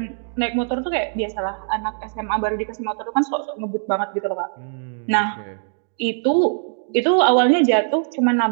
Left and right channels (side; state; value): left; silent; digital silence